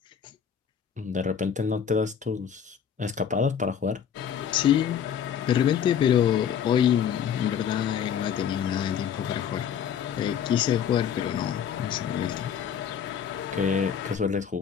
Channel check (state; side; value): quieter; right; 8.2 dB